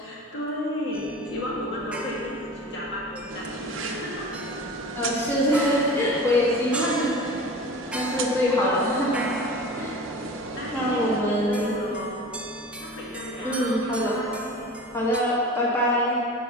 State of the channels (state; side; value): normal; both; correlation 0.36